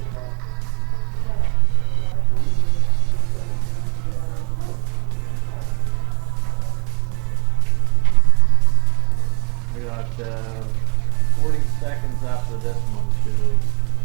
We got 40 seconds after this one, Julie.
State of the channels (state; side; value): quieter; left; 32.8 dB